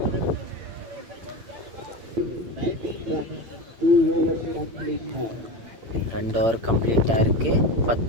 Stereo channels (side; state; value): left; late; 8.8 ms